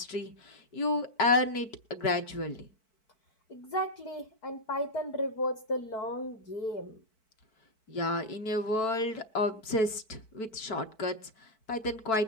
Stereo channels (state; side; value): late; right; 4.6 ms